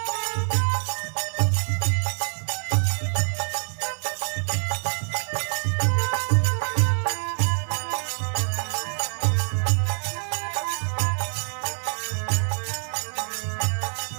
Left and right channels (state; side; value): silent; left; 61 dB below the other